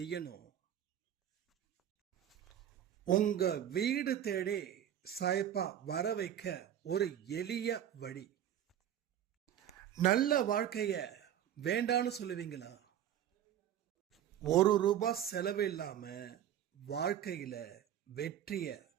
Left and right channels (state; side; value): quieter; left; 10.4 dB